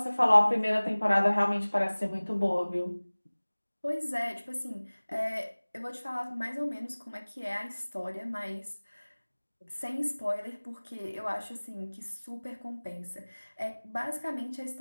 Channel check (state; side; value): inverted; both; correlation -1.00